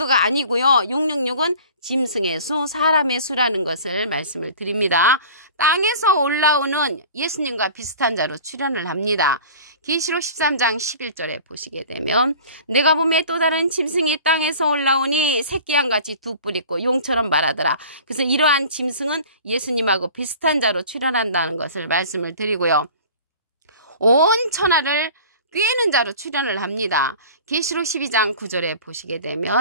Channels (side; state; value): both; inverted; correlation -0.43